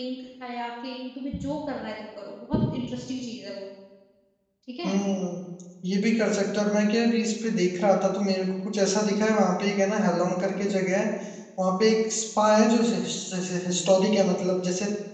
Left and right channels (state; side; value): identical; both; correlation 1.00